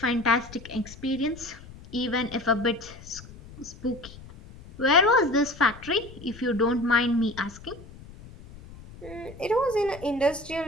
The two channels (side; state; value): left; noise; rumble, 18 dB below the sound